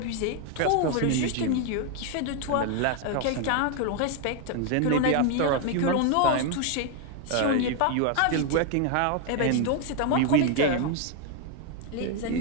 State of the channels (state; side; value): different; both; correlation 0.01